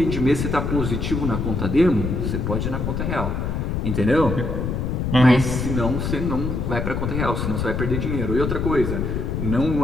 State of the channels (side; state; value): left; noise; rumble, 1 dB below the sound